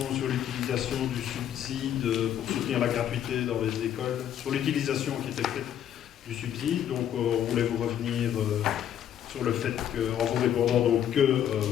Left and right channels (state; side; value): quieter; right; 10.2 dB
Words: sur l'utilisation du subside pour soutenir la gratuité dans les écoles, sur l'utilisation qui était faite du subside. Donc on voulait vous revenir sur le fait qu'en vous répondant donc que,